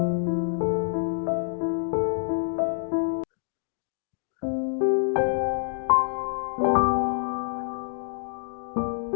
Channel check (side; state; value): right; silent; digital silence